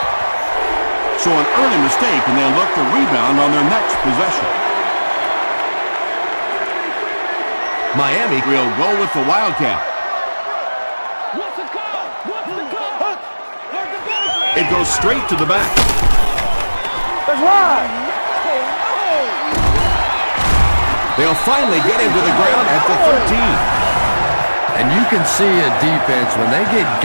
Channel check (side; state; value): both; inverted; correlation -1.00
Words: So an early mistake, and they'll look to rebound on their next possession. Miami will go with the Wildcat. It goes straight to the back. They'll finally get him to the ground at the 13. And you can see a defense, when they get